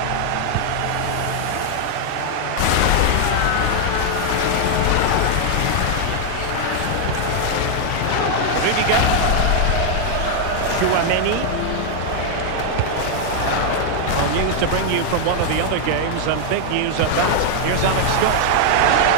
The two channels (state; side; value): different; both; correlation 0.00